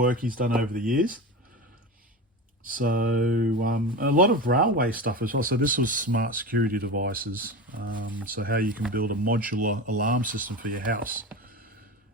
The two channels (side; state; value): both; normal; correlation 0.26